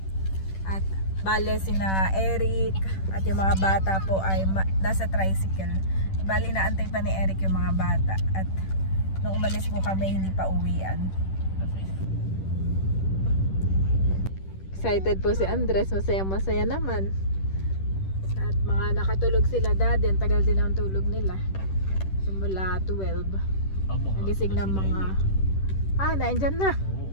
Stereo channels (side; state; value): right; late; 10 ms